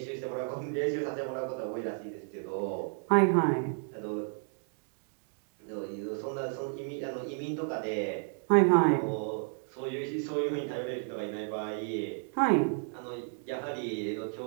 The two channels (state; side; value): silent; left; 56 dB below the other